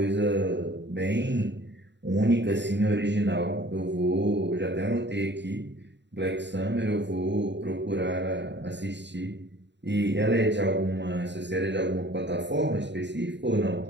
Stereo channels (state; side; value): late; left; 0.52 ms